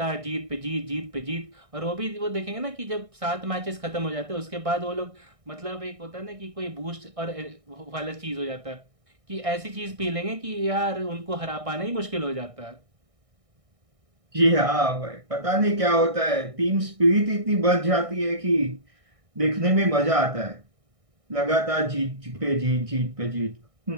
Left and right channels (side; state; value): left; late; 1.6 ms